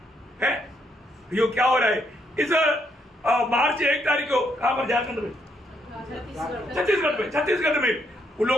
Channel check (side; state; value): both; normal; correlation 0.74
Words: है ये क्या हो रहा है? इस मार्च 1 तारीख को कहां पर, झारखंड में, छत्तीसगढ़ में उन